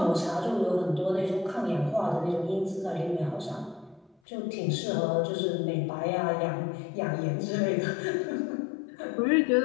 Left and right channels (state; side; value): drops out; right; at 4.2 s